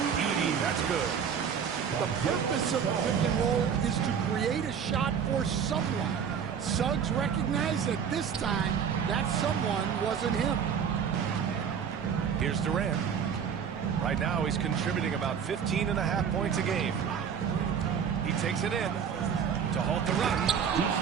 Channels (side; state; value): left; quieter; 7.4 dB